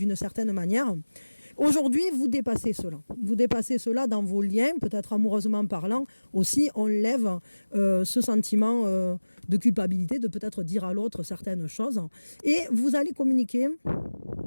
certaine manière. Aujourd'hui, vous dépassez cela. Vous dépassez cela dans vos liens, peut-être amoureusement parlant. Aussi, on lève ce sentiment de culpabilité, de peut-être dire à l'autre certaines choses. Et vous allez communiquer.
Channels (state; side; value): inverted; both; correlation -1.00